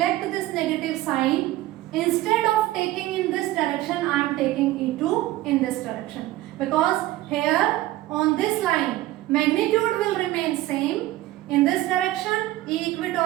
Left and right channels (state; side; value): quieter; left; 16.3 dB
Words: this negative sign, instead of taking in this direction, I am taking E2 in this direction, because here on this line magnitude will remain same. In this direction E